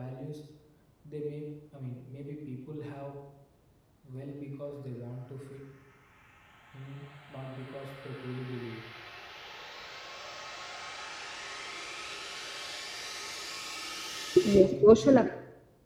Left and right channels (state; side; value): identical; both; correlation 1.00